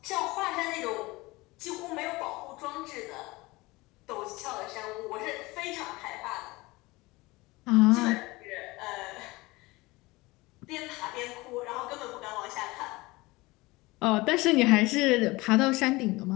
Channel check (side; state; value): right; quieter; 21.9 dB